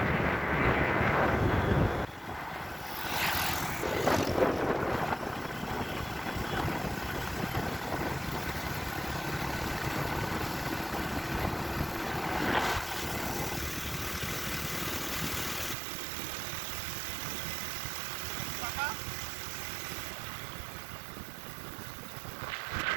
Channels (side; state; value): left; drops out; at 15.8 s